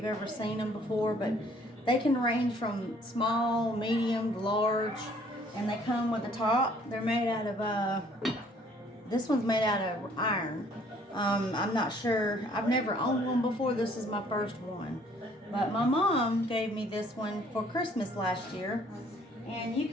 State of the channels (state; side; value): normal; both; correlation 0.59